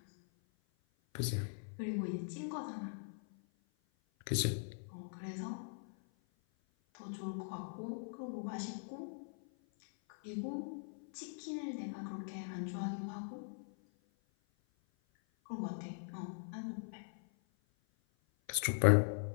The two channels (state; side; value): silent; right; 50 dB below the other